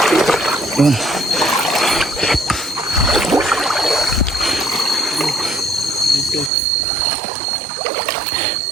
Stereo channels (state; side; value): drops out; left; at 6.5 s